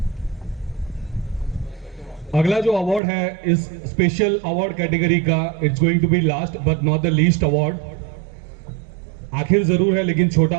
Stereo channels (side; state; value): left; drops out; at 3.0 s